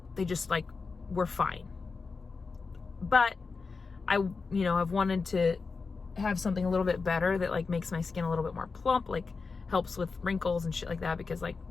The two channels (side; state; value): right; quieter; 4.6 dB